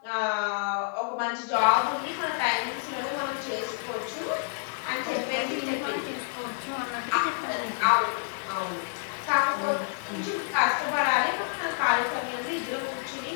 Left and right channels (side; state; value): right; silent; digital silence